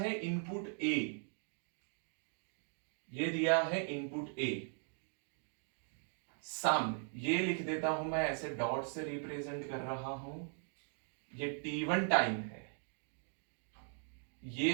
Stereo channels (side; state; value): left; silent; 51 dB below the other